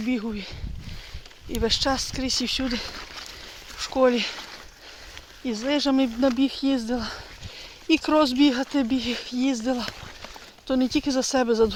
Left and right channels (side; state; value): both; identical; correlation 1.00